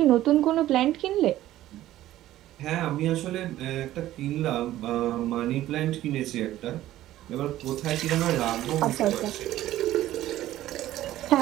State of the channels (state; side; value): quieter; left; 14.2 dB